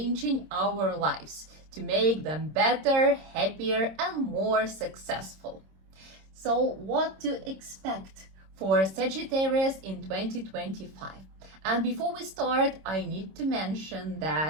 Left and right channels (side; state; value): left; late; 26 ms